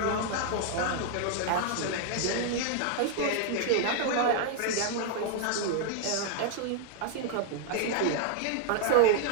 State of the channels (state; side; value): different; both; correlation -0.01